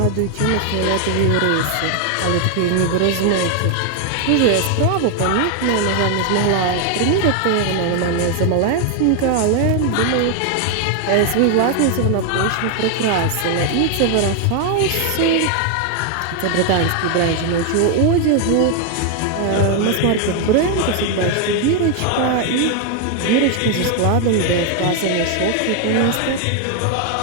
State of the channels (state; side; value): different; both; correlation 0.01